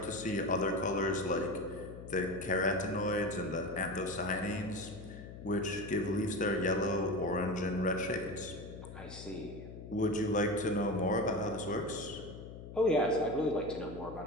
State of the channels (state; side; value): noise; left; hum, 12 dB below the sound